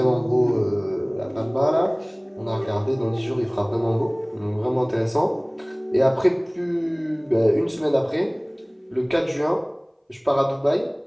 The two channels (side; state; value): both; identical; correlation 1.00